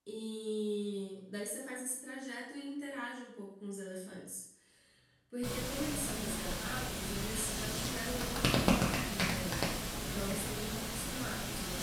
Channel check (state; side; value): identical; both; correlation 1.00